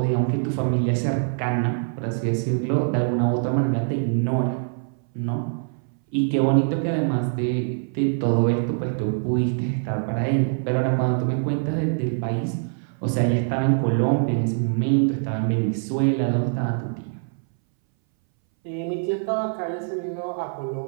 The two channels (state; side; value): silent; left; 61 dB below the other